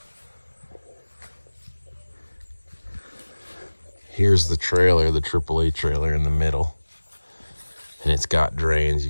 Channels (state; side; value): inverted; both; correlation -1.00